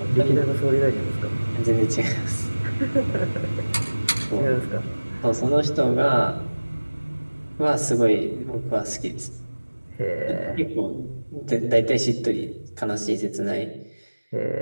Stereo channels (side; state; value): both; inverted; correlation -1.00